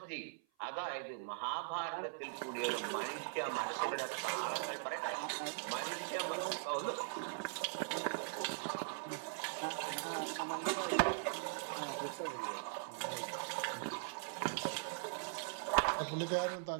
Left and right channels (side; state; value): left; silent; 50 dB below the other